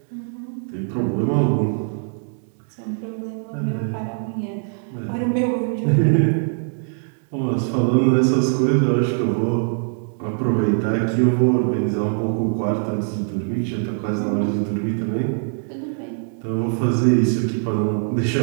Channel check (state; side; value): silent; left; digital silence